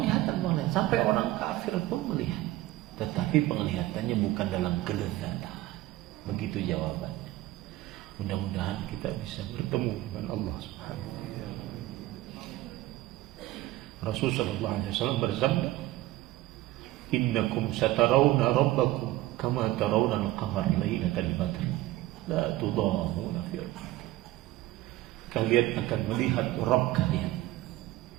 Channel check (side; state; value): left; quieter; 16.8 dB